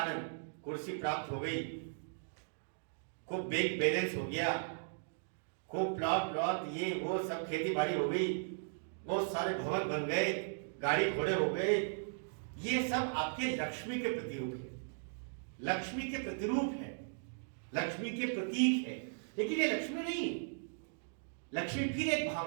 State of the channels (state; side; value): silent; left; digital silence